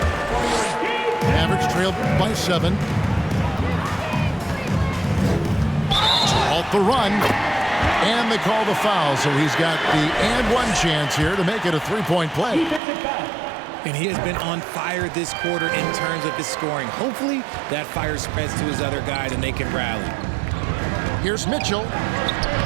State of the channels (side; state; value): left; drops out; at 12.8 s